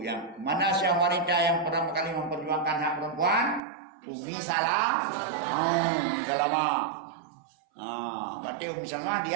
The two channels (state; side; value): drops out; left; at 3.6 s